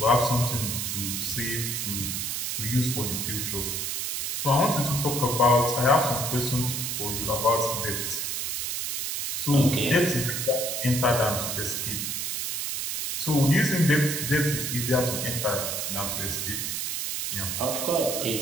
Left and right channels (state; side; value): noise; right; hiss, 2 dB below the sound